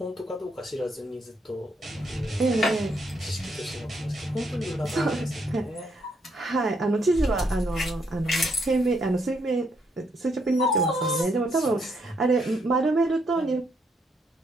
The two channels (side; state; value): both; normal; correlation 0.74